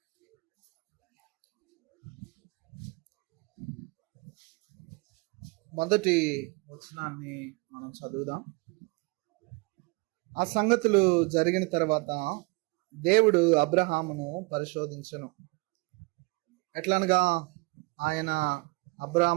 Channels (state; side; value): quieter; left; 26.7 dB